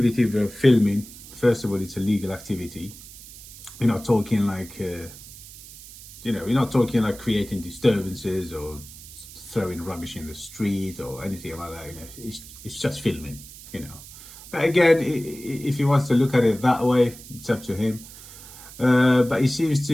of filming, first of all, it's a legal activity. We're not talking like, we're not talking like creating disturbances or throwing rubbish in the street or anything like that. It's just filming, But again, if he wants to look at it that way, it's up to him. But he seems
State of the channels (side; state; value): right; noise; hiss, 17 dB below the sound